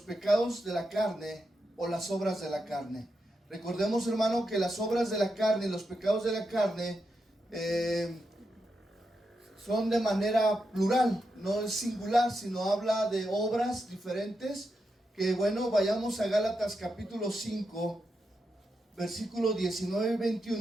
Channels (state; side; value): normal; both; correlation 0.85